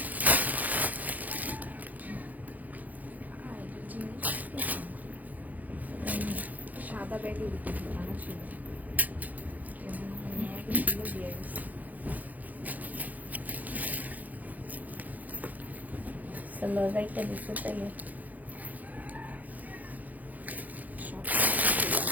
সাদা ব্যাগে বানা ছিল দিয়ে গেছে। সালোয়ারটা দিতে চাইলে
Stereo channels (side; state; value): left; late; 0.080 ms